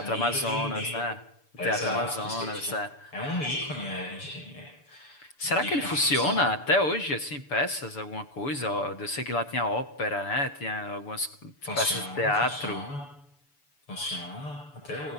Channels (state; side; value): late; right; 6.9 ms